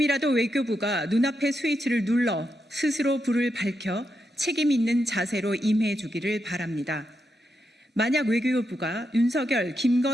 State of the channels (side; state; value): both; normal; correlation 0.84